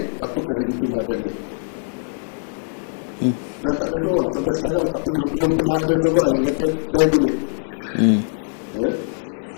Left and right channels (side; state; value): right; silent; digital silence